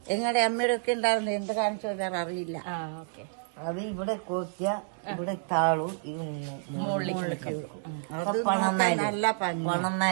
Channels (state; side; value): silent; left; digital silence